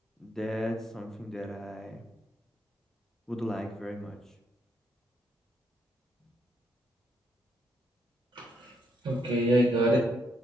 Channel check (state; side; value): normal; both; correlation 0.76